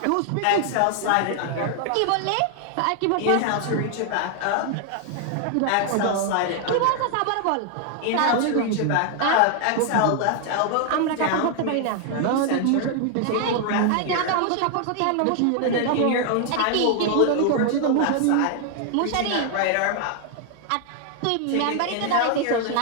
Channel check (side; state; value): both; different; correlation 0.00